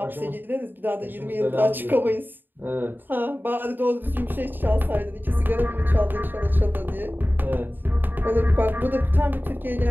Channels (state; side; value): late; left; 0.093 ms